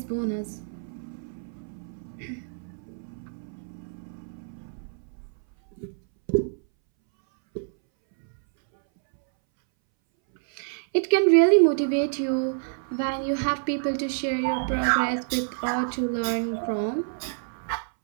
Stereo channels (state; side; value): silent; left; 60 dB below the other